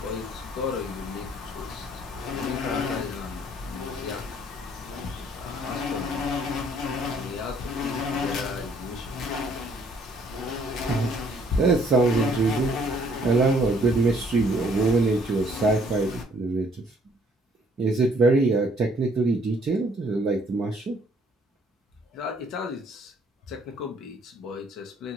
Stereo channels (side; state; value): both; normal; correlation 0.62